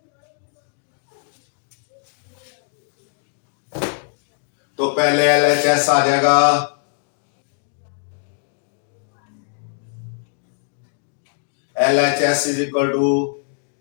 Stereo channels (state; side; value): silent; right; digital silence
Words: तो पहले LHS आ जाएगा, LHS is equal to